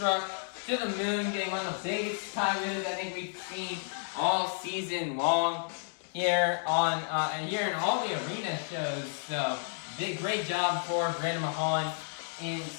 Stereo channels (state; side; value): silent; right; digital silence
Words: to the moon, getting one of the biggest sky wheelies I think we've seen all season long here on and here in all the arena shows. So great job for Brianna Mahon in